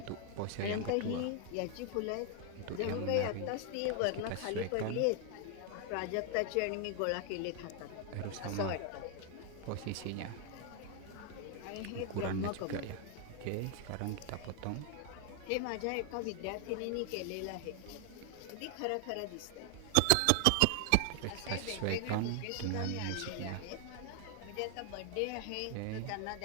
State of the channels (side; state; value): both; different; correlation 0.00